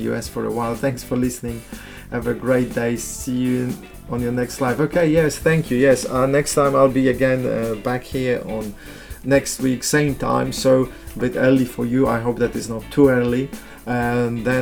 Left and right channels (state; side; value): identical; both; correlation 1.00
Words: US for a while. Thanks for listening. Have a great day. See you on your next live. Okay, yes, thank you. Yes, next time I'll be again back here on next week, same time. So a bit early for you. I hope that is not too early. And